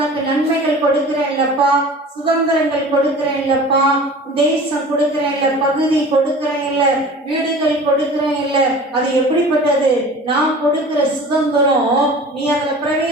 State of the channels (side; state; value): both; normal; correlation 0.40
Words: நன்மைகள் கொடுக்கிறேன் இல்லப்பா, சுதந்திரங்கள் கொடுக்கிறேன் இல்லப்பா, தேசம் கொடுக்கிறேன் இல்ல, பகுதி கொடுக்கிறேன் இல்ல, வீடுகள் கொடுக்கிறேன் இல்ல. அது எப்படிப்பட்டது? நான் கொடுக்கிற சுதந்திரம் நீ அதுல